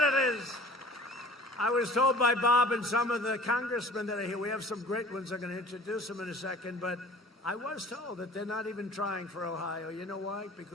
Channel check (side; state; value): both; normal; correlation 0.46